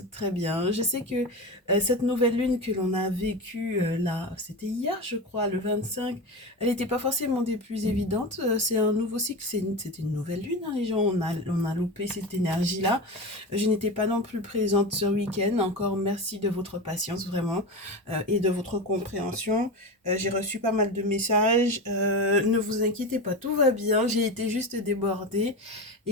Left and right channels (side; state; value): both; normal; correlation 0.23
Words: très bien. Je sais que cette nouvelle lune que l'on a vécue là, c'était hier je crois, le 25, elle n'était pas forcément des plus évidentes. C'est un nouveau cycle, c'était une nouvelle lune, hein, les gens, on a loupé cette énergie-là. Je n'étais pas non plus présente ce week-end. Encore merci de votre patience vraiment et de votre compréhension. J'ai reçu pas mal de messages. Ne vous inquiétez pas, tout va bien. J'ai été juste débordée.